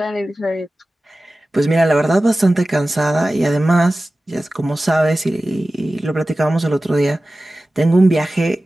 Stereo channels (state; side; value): normal; both; correlation 0.96